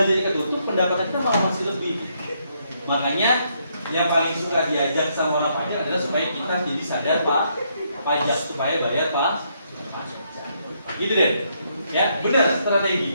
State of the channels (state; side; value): inverted; both; correlation -0.74